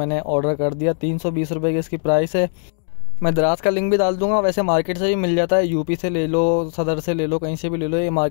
ऑर्डर कर दिया। 320 रुपये की इसकी प्राइस है। मैं दराज का लिंक भी डाल दूंगा। वैसे मार्केट से भी मिल जाता है, यूपी से ले लो, सदर से ले लो, कहीं से भी ले लो। ये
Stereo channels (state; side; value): silent; right; 66 dB below the other